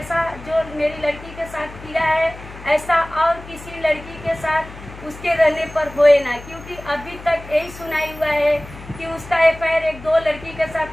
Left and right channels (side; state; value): left; noise; hum, 16 dB below the sound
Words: जो मेरी लड़की के साथ किया है, ऐसा और किसी लड़की के साथ उसके रहने पर होए ना, क्योंकि अभी तक यही सुनाई हुआ है कि उसका एफआईआर एक 2 लड़की के